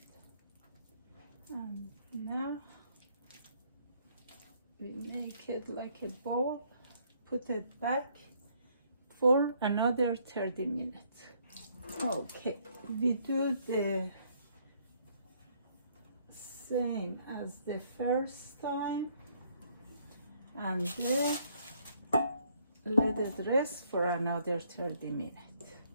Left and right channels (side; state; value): both; inverted; correlation -0.67